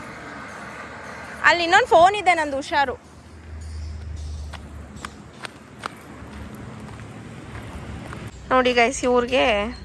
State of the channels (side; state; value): both; identical; correlation 1.00